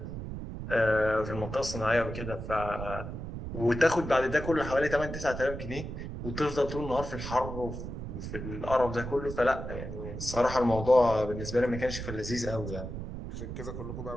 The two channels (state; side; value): noise; right; rumble, 7 dB below the sound